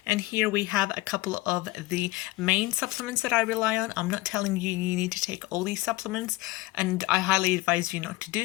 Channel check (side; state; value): right; quieter; 19.6 dB